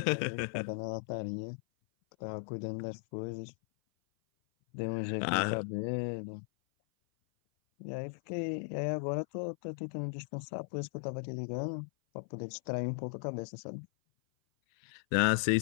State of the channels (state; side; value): silent; right; 54 dB below the other